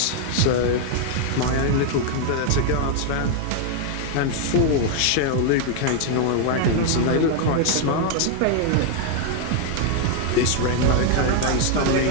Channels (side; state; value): both; different; correlation 0.00